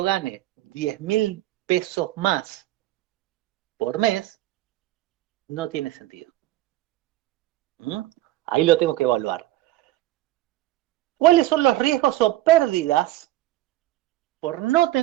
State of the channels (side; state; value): left; quieter; 15.9 dB